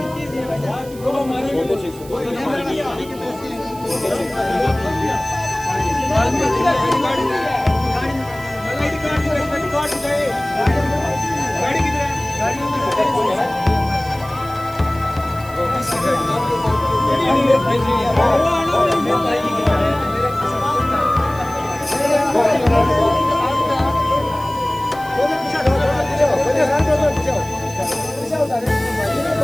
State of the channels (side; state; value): right; noise; hiss, 20 dB below the sound